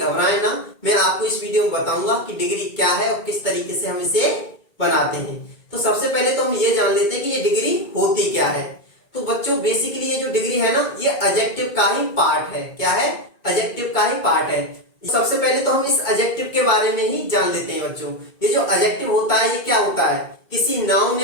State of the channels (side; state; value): right; late; 2.2 ms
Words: ना, मैं आपको इस वीडियो में बताऊंगा कि डिग्री क्या है और किस तरीके से हम इसे बनाते हैं। तो सबसे पहले तो हम ये जान लेते हैं कि ये डिग्री होती क्या है। तो बच्चों बेसिकली ये जो डिग्री है ना, ये एडजेक्टिव का ही पार्ट है। क्या है? एडजेक्टिव का ही पार्ट है। सबसे पहले तो हम इस एडजेक्टिव के बारे में ही जान लेते हैं बच्चों। ये जो एडजेक्टिव होता है ये क्या होता है? किसी नाउन